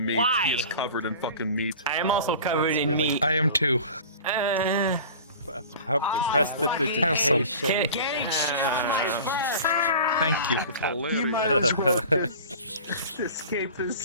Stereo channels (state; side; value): inverted; both; correlation -0.39